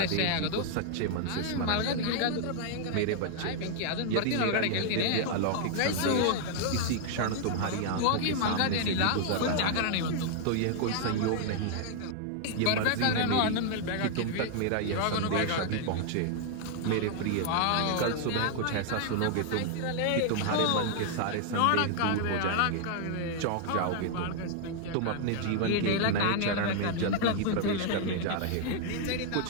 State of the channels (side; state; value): both; different; correlation 0.00